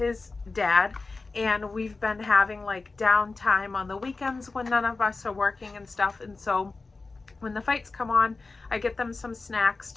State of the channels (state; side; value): quieter; right; 3.8 dB